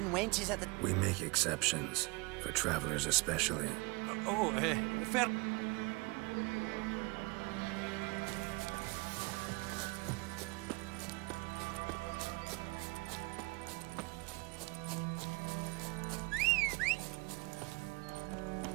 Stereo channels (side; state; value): left; quieter; 26.5 dB